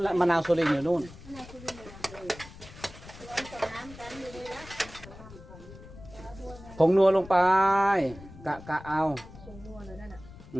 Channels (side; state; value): left; noise; rumble, 17 dB below the sound